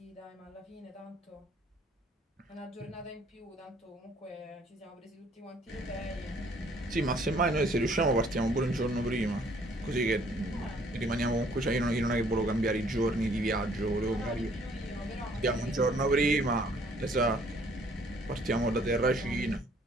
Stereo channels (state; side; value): normal; both; correlation 0.61